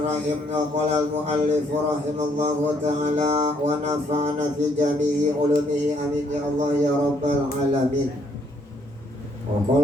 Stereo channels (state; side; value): normal; both; correlation 0.69